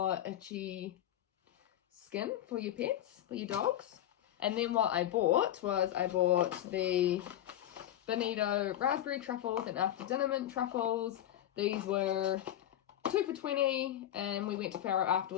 itchy skin for your pets, for your dogs. And then what I bought was the Benito raspberry truffles and after dinner mint truffles. These were 2 for $20 and we went to Farrow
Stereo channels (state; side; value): quieter; right; 12.1 dB